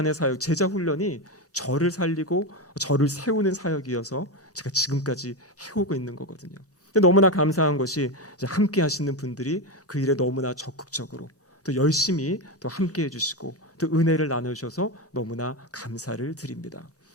사역, 제자훈련이 저를 살리고 저를 세우는 사역이어서 제가 지금까지 해오고 있는 거거든요. 근데 너무나 감사한 것이 이제 함께 하시는 분들이 그 일에 너무나 적극적으로 또 열심히 또 함께 해주시고 또 은혜를 나누셔서 너무나 감사를 드립니다.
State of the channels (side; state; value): both; normal; correlation 0.14